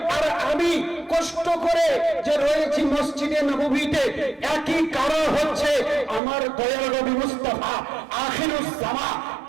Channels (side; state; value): left; drops out; at 6.2 s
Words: আর আমি কষ্ট করে যে রয়েছি মসজিদে নববীতে, একই কারণ হচ্ছে আমার দয়াল নবী মুস্তাফা আখিরুস জামা